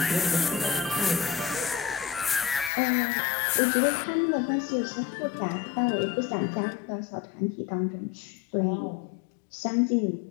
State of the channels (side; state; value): right; drops out; at 2.7 s